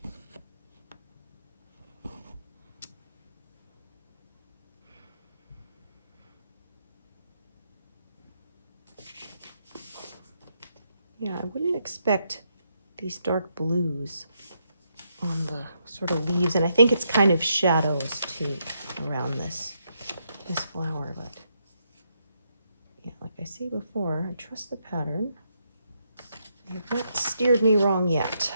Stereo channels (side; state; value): both; inverted; correlation -0.79